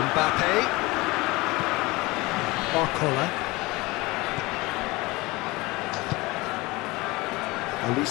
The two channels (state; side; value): quieter; right; 22.3 dB